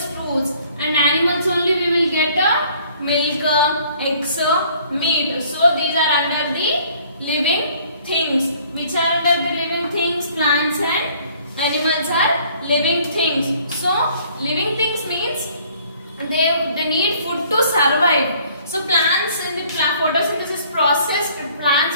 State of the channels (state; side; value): inverted; both; correlation -0.58